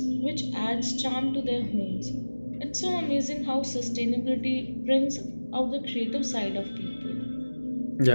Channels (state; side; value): inverted; both; correlation -1.00